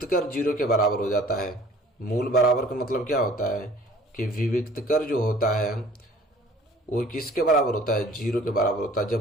0 के बराबर हो जाता है। मूल बराबर का मतलब क्या होता है कि विविक्तकर जो होता है वो किसके बराबर होता है, 0 के बराबर होता है।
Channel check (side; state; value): both; normal; correlation 0.51